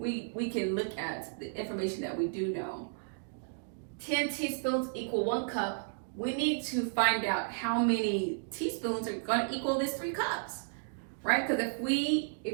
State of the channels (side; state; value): left; silent; digital silence